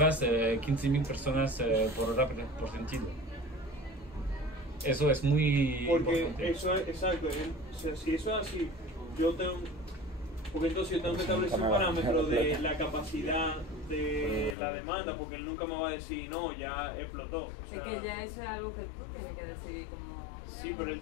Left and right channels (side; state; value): right; drops out; at 14.6 s